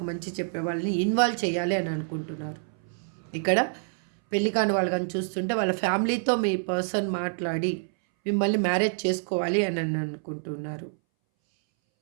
మంచి చెప్పేవాళ్ళని ఇన్వాల్వ్ చేయాలి అని అనుకుంటున్నారు. ఇక్కడ పెళ్లి కాని వాళ్ళు కానీ చూస్తుంటే వాళ్ళ ఫ్యామిలీతో మీ పర్సన్ మాట్లాడి మిమ్మల్ని మ్యారేజ్ చేసుకోవాలి అని అనుకుంటున్నారు.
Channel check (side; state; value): left; silent; 60 dB below the other